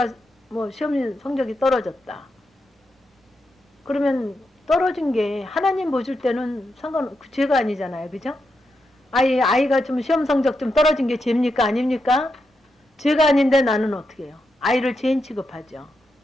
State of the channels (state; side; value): normal; both; correlation 0.85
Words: 시험 성적이 떨어졌다. 그러면 떨어진 게 하나님 보실 때는 죄가 아니잖아요. 그죠? 아이가 좀 시험 성적 좀 떨어진 게 죄입니까? 아닙니까? 죄가 아닌데 나는 어떻게 해요? 아이를 죄인 취급하죠.